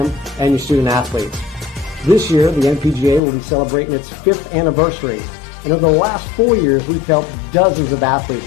and your student athletes. This year, the NPGA will be celebrating its 5th anniversary, and over the last 4 years, we've helped dozens of athletes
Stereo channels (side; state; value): right; drops out; at 3.2 s